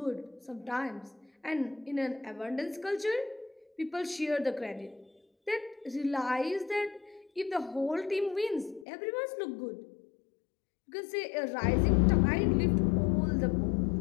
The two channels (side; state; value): right; drops out; at 8.8 s